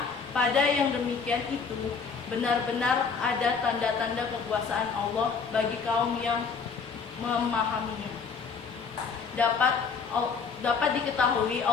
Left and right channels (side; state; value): right; quieter; 5.5 dB